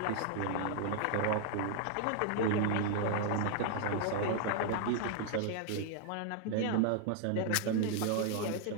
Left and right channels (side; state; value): both; different; correlation 0.00